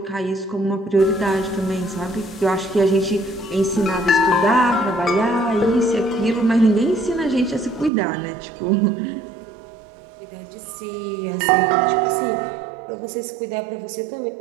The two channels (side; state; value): left; drops out; at 7.9 s